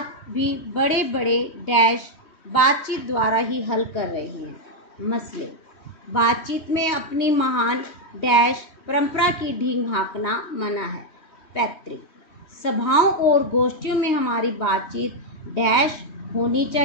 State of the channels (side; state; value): right; late; 3.1 ms